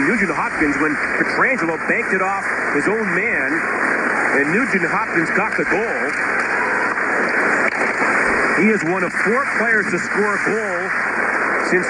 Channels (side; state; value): both; identical; correlation 1.00